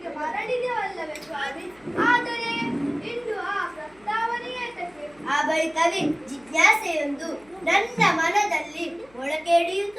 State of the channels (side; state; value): left; noise; hum, 29 dB below the sound